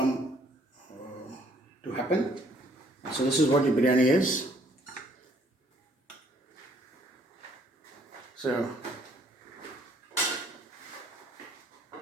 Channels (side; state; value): both; normal; correlation 0.63